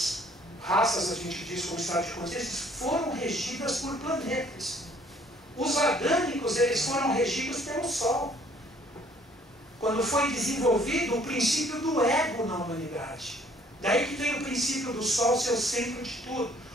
a gente diz como estado de consciência, foram regidas por planetas. Os adâmicos, eles foram regidos pelo Sol. Quando foi desenvolvido o princípio do ego na humanidade. Daí que tem o princípio do Sol ser o centro de tudo.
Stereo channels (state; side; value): normal; both; correlation 0.60